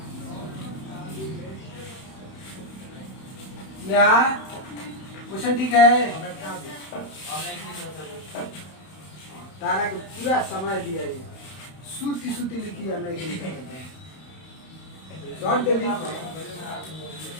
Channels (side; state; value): right; late; 31 ms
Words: क्या क्वेश्चन ठीक है तारा को पूरा समय दिया है सूती सूती लिखी है नहीं लिखी शॉर्ट दे लिख